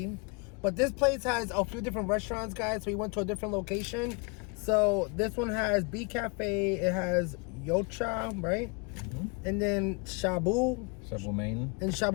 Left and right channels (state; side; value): quieter; right; 32.2 dB